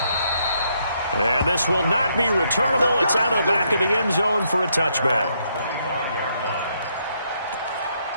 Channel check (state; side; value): inverted; both; correlation -0.74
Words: And this will not be returnable. It's out of the back of the end zone for a touchback.